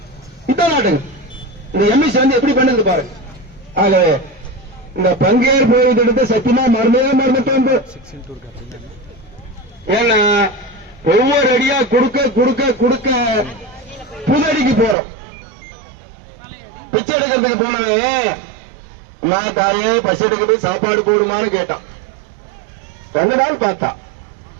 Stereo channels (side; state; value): left; drops out; at 15.0 s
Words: இதான் நாட்டுங்க. இந்த எம்எஸ்சி வந்து எப்படி பண்ணுது பாருங்க. ஆக இந்த பங்கேற்பு எடுத்து சத்தியமா மறந்துட்டோம். ஏன்னா ஒவ்வொரு அடியா கொடுக்க புதடிக்கு போறோம். பிச்சை எடுக்கிறதுக்கு போனவன் நான் தாயே பசி எடுக்கிறது சாப்பாடு போடுமான்னு கேட்டான். 2 நாள் பார்த்தா,